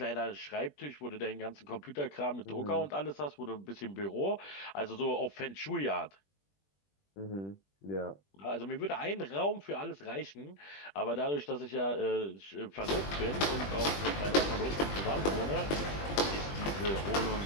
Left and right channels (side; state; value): right; late; 20 ms